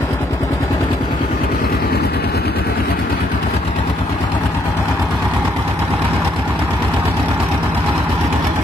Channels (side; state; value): both; normal; correlation 0.71